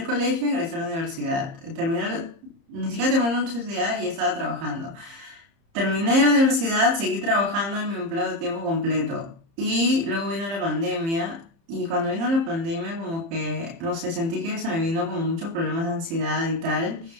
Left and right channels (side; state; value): left; late; 30 ms